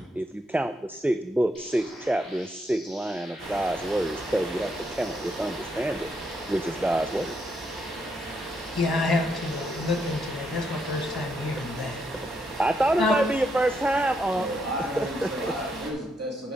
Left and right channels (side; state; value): both; normal; correlation 0.78